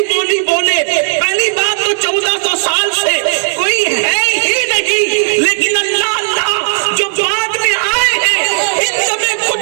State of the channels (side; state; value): left; silent; digital silence